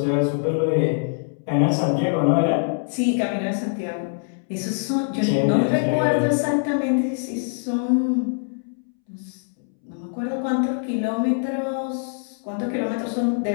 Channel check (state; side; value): silent; right; 63 dB below the other